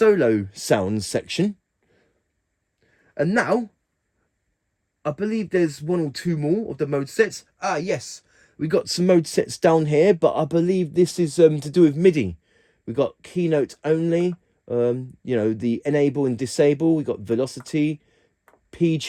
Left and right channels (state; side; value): identical; both; correlation 1.00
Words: sounds section. And now I believe there's one or two more of the mode sets. Ah, yes, we got some mode sets down here, but I believe this is to do with MIDI. We got keynote only, you know, the enable and disable. We got velocity, P